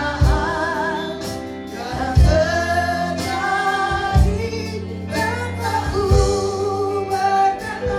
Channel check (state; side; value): identical; both; correlation 1.00